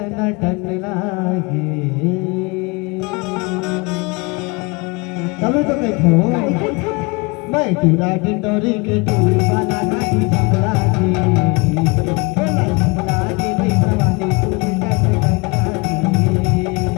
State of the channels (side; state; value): right; quieter; 27.6 dB